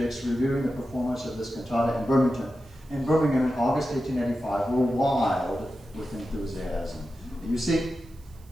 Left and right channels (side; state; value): right; noise; hiss, 29 dB below the sound